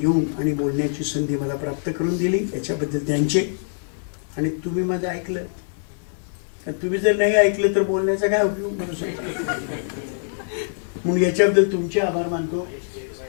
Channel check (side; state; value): right; silent; digital silence